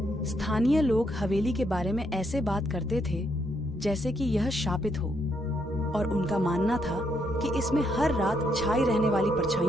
स्थानीय लोग हवेली के बारे में ऐसे बात करते थे जैसे कि यह शापित हो, और उनका मानना था कि इसमें हर रात छाई रहने वाली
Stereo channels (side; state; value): both; normal; correlation 0.75